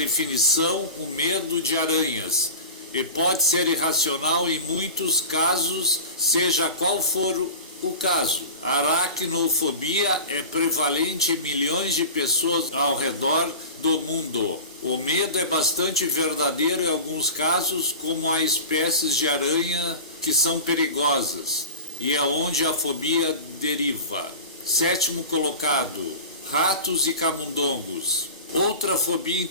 o medo de aranhas e pode ser irracional em muitos casos, seja qual for o caso. A aracnofobia é prevalente em milhões de pessoas ao redor do mundo. O medo é bastante verdadeiro em alguns casos, como há espécies de aranha que são perigosas, e é onde a fobia deriva. 7º colocado, ratos e camundongos. Outra fobia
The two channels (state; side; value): inverted; both; correlation -0.33